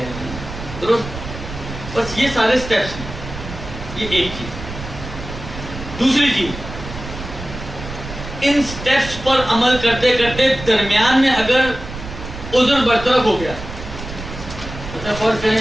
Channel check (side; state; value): right; noise; rumble, 10 dB below the sound